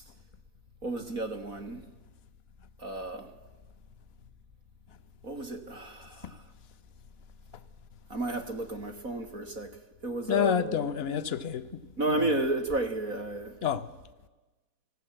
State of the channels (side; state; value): left; late; 4.1 ms